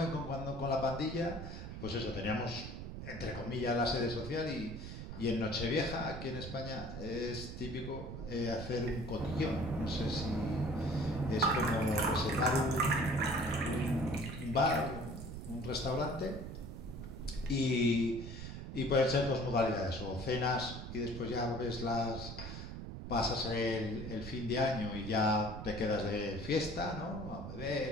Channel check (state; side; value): noise; right; rumble, 8 dB below the sound